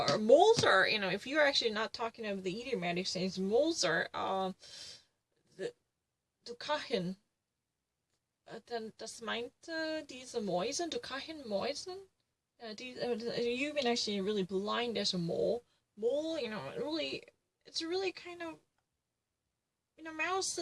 or moles are, if you're actually not talking about the idiomatic sense, moles are, du kann, das meint, diese Mäuse, du kann Mäusen, you've been actually really blind as a mole. Mole, it's really kind of,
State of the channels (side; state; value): both; identical; correlation 1.00